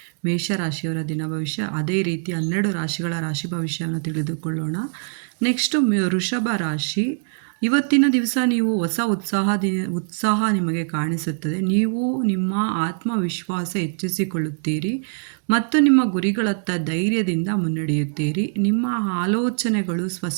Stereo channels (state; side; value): silent; left; digital silence